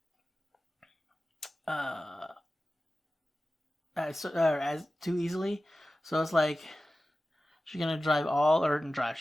As too easily. So it's like, She's gonna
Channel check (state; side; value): normal; both; correlation 0.95